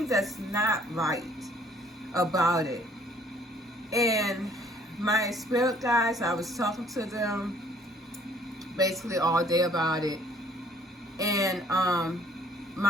that's not right about it. And my spirit guides, I was talking to them basically all day about it. And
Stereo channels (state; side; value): normal; both; correlation 0.59